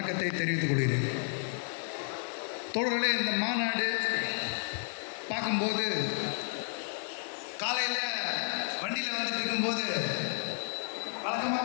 தெரிவித்துக் கொள்கிறேன். தோழர்களே, இந்த மாநாடு பார்க்கும்போது காலையில் வண்டியில் வந்துட்டு இருக்கும்போது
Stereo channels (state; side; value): silent; right; digital silence